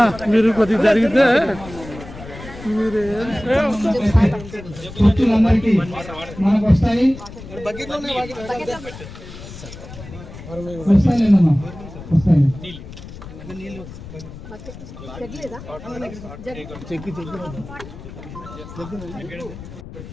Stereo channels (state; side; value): noise; left; rumble, 14 dB below the sound